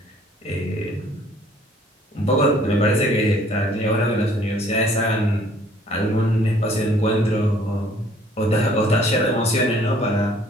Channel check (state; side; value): normal; both; correlation 0.58